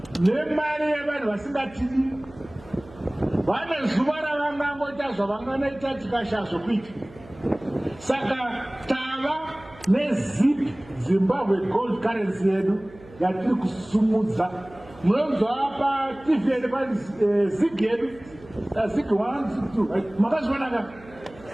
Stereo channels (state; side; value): noise; right; hum, 21 dB below the sound